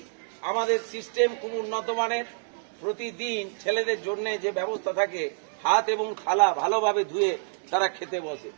আমাদের সিস্টেম খুব উন্নত মানের। প্রতিদিন ছেলেদের জন্য যে ব্যবস্থা থাকে, হাত এবং থালা ভালোভাবে ধুয়ে তারা খেতে বসে।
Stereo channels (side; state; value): left; silent; digital silence